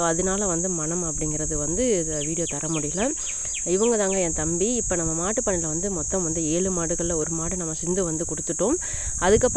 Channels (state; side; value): identical; both; correlation 1.00